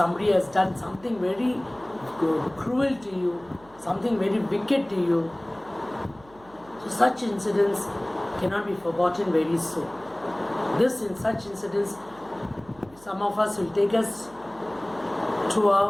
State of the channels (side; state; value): right; noise; hum, 25 dB below the sound